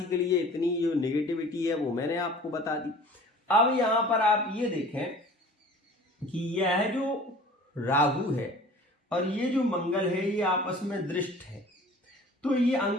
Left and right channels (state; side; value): normal; both; correlation 0.45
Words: के लिए इतनी जो नेगेटिविटी है वो मैंने आपको बता दी। अब यहां पर आप ये देखें कि यह जो राहु है और ये जो मंगल है ये आपस में दृष्ट है, तो ये